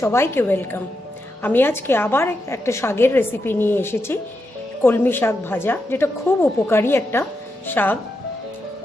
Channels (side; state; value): both; normal; correlation 0.85